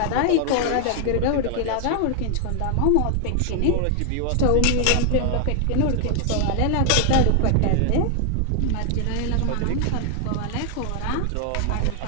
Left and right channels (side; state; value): both; different; correlation 0.00